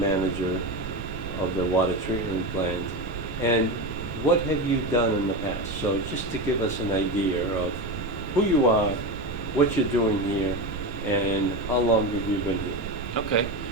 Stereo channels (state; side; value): noise; right; rumble, 10 dB below the sound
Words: of the water treatment plant? And what have you done in the past? So just to give us an idea of who you are, what you're doing here, and how long have you been here? Okay.